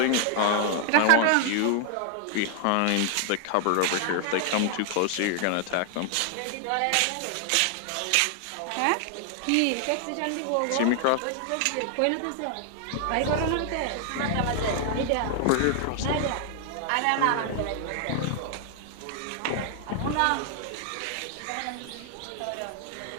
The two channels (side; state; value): both; different; correlation 0.00